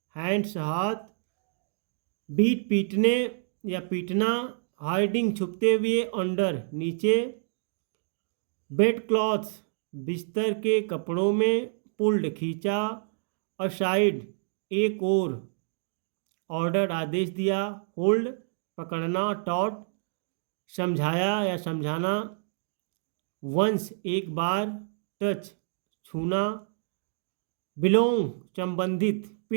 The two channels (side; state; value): left; silent; digital silence